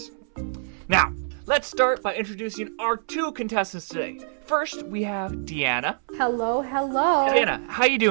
Now, let's start by introducing our two contestants today. First, we have Diyana. Hello, hello. Diyana, how you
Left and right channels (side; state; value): left; silent; 62 dB below the other